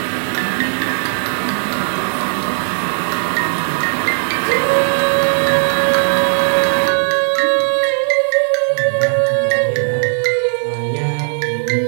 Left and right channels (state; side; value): silent; left; digital silence